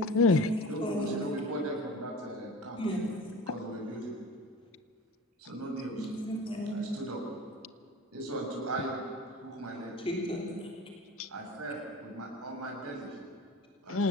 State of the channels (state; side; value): normal; both; correlation 0.36